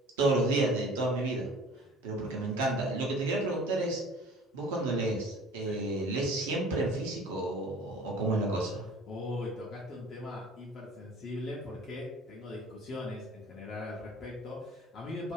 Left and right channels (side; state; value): both; normal; correlation 0.47